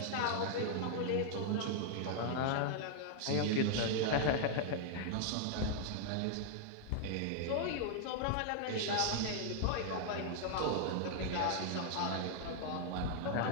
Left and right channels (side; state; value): both; different; correlation 0.00